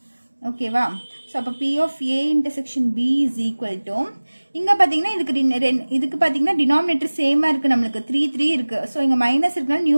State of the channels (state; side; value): inverted; both; correlation -1.00